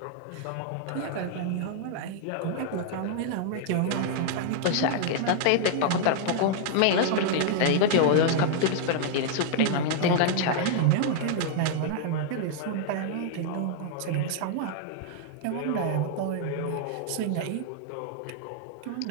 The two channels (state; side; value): different; both; correlation -0.01